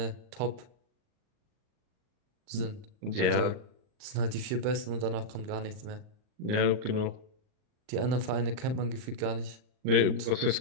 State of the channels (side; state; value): left; late; 39 ms